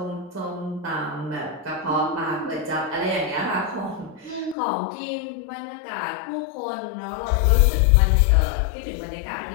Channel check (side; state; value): right; drops out; at 4.5 s